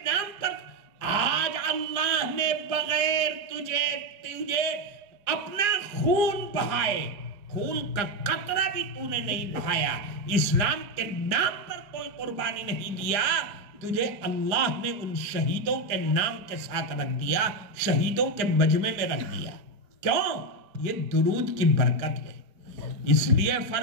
نام پر. آج اللہ نے بغیر تجھے اپنا خون بہائے، خون کا قطرہ بھی تو نے نہیں بہایا، اسلام کے نام پر کوئی قربانی نہیں دیا، تجھے اللہ نے ان شہیدوں کے نام کے ساتھ رکھ دیا، شہیدوں کے مجمع میں رکھ دیا. کیوں؟ یہ درود کی برکت ہے. اس لیے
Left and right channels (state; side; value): late; left; 4.9 ms